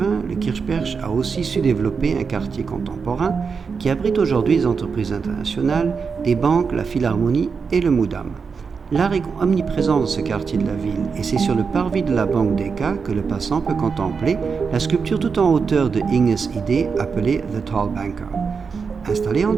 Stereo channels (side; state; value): left; quieter; 5.5 dB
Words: le Kirchberg a aussi su développer un quartier contemporain qui abrite aujourd'hui des entreprises internationales, des banques, la Philharmonie et le Moudam. L'art est omniprésent dans ce quartier de la ville et c'est sur le parvis de la Banque Deca que le passant peut contempler la sculpture tout en hauteur de Inges Idee appelée The Tall Banker. Installée en